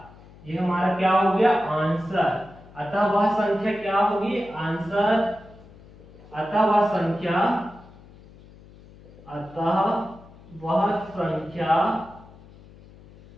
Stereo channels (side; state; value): left; noise; hum, 22 dB below the sound